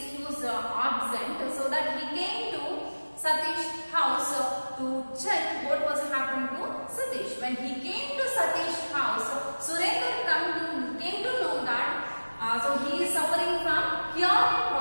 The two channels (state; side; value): inverted; both; correlation -1.00